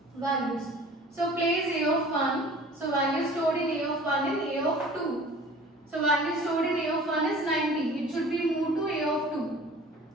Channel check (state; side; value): normal; both; correlation 0.46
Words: values. So place a of 1. So value stored in a of 1 and a of 2. So value stored in a of 1 is 90. It should be moved to a of 2.